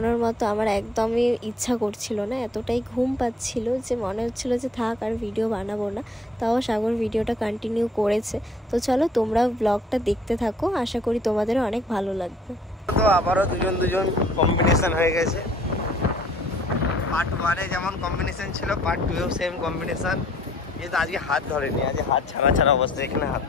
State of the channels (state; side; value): normal; both; correlation 0.59